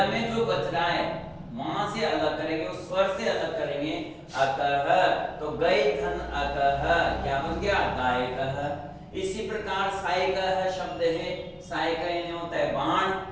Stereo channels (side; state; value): both; identical; correlation 1.00